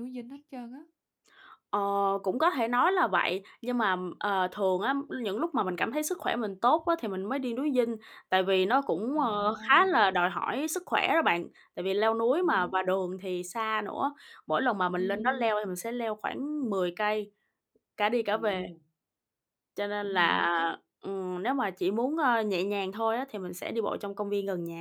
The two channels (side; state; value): both; identical; correlation 1.00